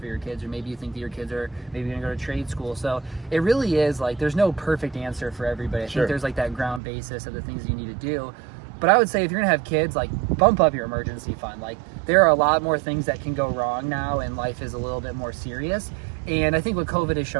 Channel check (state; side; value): drops out; left; at 6.8 s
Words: for your kids, or maybe you think that your kids are maybe going to go to trade school. So it really is like there's no perfect answer for everybody. I think there's like that ground basis of the things you need to do. But I would say if you're gonna have kids, like bump up your emergency fund. Like there are a lot more things that can go wrong now, and life is a little bit more serious. And I think what COVID has